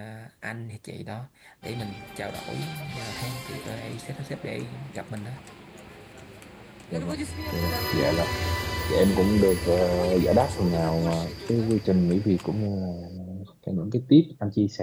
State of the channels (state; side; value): identical; both; correlation 1.00